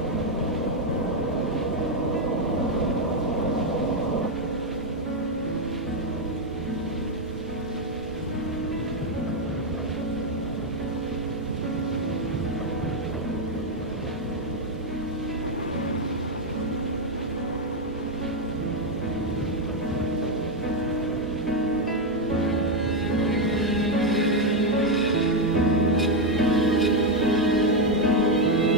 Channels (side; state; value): both; normal; correlation 0.04